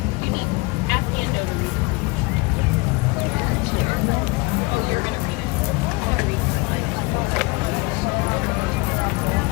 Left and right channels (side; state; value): right; quieter; 26.0 dB